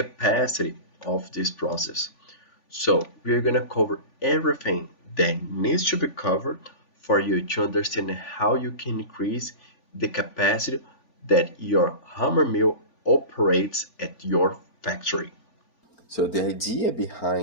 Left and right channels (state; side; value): late; right; 3.5 ms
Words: of this process. So we're going to cover everything that needs to be covered for you to understand how you can increase the capacity that your hammer mill operates at your factory. So the idea